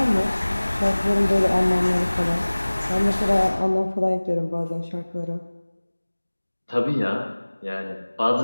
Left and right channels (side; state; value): both; inverted; correlation -1.00